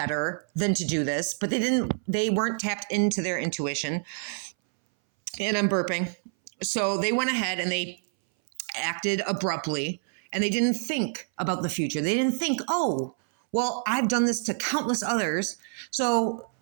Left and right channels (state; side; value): silent; left; 60 dB below the other